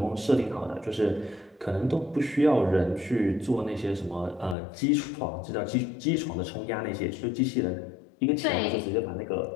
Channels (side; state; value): right; drops out; at 4.5 s